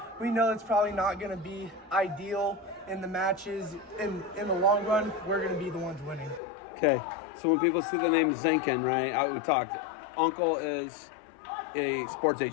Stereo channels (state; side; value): drops out; right; at 6.4 s